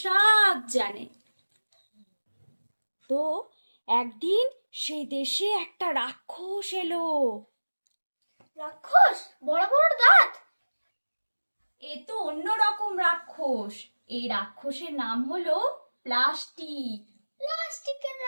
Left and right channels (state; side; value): inverted; both; correlation -1.00